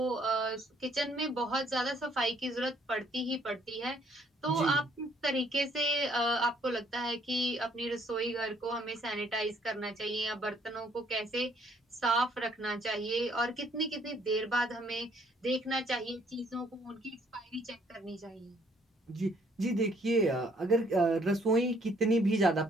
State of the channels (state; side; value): normal; both; correlation 0.65